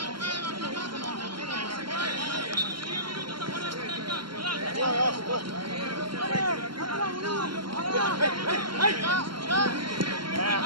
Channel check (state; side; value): late; left; 0.73 ms